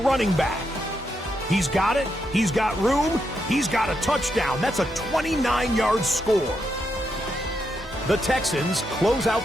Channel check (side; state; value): both; normal; correlation 0.82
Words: back. He's got it, he's got room, he's got a touchdown. That's a 29-yard score. The Texans close out